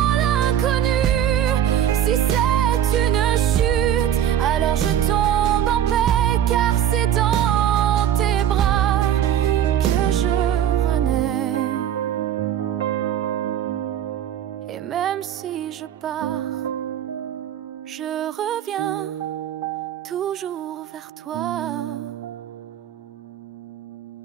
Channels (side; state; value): left; quieter; 10.3 dB